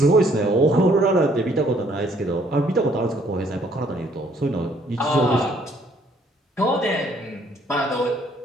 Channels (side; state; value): both; normal; correlation 0.64